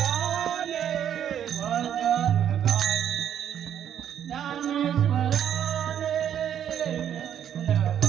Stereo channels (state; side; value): quieter; left; 9.6 dB